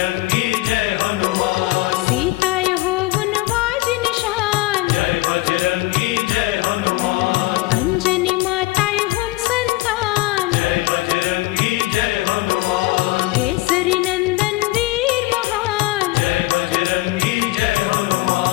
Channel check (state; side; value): quieter; right; 19.7 dB